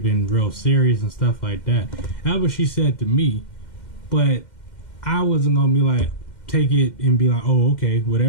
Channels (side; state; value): right; late; 2.1 ms